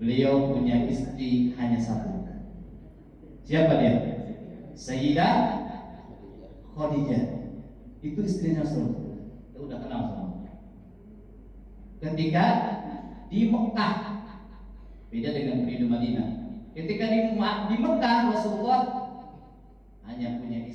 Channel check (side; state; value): both; identical; correlation 1.00